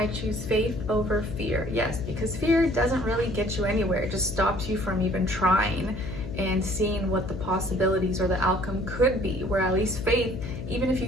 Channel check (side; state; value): left; noise; hum, 8 dB below the sound